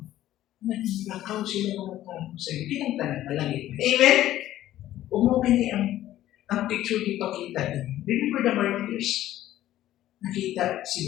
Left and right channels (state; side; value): quieter; right; 13.6 dB